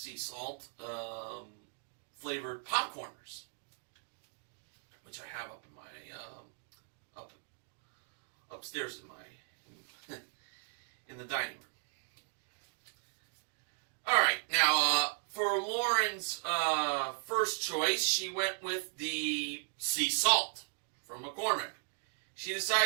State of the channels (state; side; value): silent; left; 53 dB below the other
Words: salt flavored popcorners, which I have up in my upstairs in my in the dining room. All right, now for Lauren's first choice, she went with the sea salt from McCormick. She